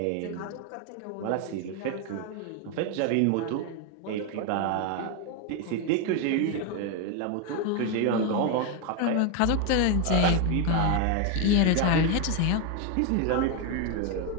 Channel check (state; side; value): different; both; correlation 0.02